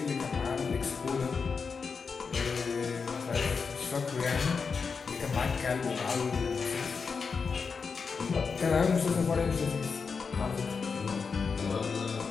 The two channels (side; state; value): right; quieter; 5.3 dB